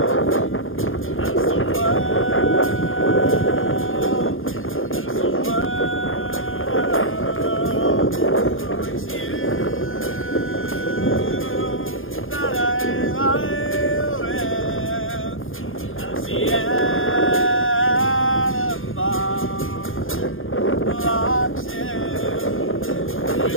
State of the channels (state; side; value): late; right; 0.59 ms